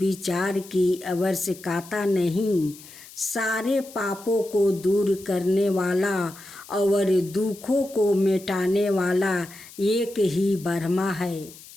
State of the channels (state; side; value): noise; left; hiss, 19 dB below the sound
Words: की आवश्यकता नहीं। सारे पापों को दूर करने वाला और दुखों को मिटाने वाला एक ही ब्रह्मा है।